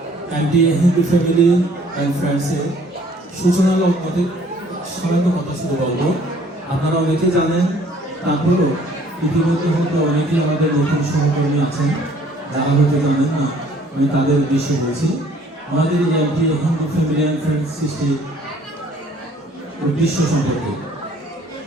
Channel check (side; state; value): both; normal; correlation 0.58